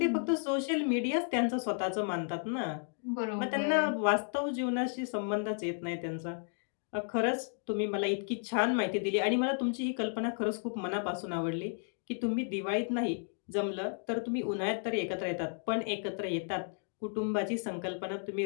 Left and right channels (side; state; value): right; silent; 56 dB below the other